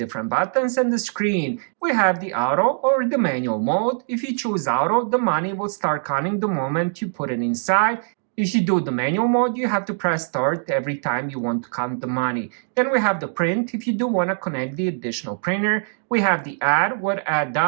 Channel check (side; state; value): left; silent; digital silence